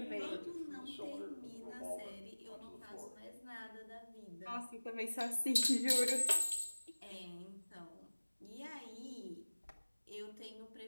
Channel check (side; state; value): both; inverted; correlation -1.00